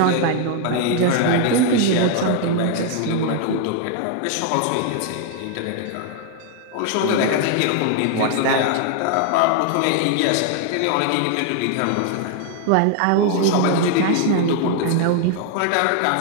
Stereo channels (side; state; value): both; different; correlation 0.00